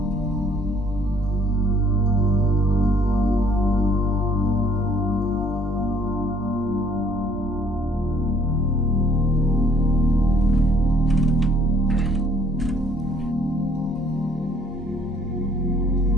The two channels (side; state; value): both; normal; correlation 0.62